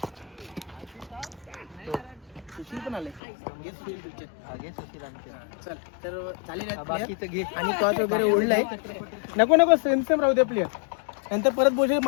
सुशील पण आले. चल तर चालेल घे. आणि टॉस वगैरे ओढलाय. नको सेम राहू दे प्लेअर. नंतर परत बोल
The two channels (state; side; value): drops out; right; at 3.2 s